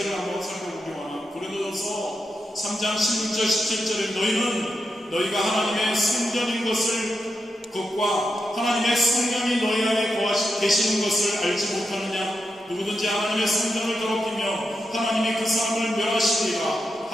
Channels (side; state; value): both; normal; correlation 0.86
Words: 한번 살펴보기 원합니다. 고린도전서 3장 16절 17절에 너희가 하나님의 성전인 것과 하나님의 성령이 너희 안에 계시는 것을 알지 못하느냐? 누구든지 하나님의 성전을 더럽히며 하나님이 그 사람을 멸하시리라.